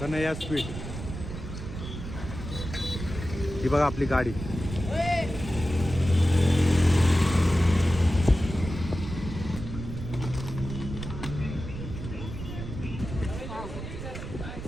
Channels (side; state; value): right; noise; rumble, 8 dB below the sound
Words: कन्हैया स्वीट. ही बघा आपली गाडी.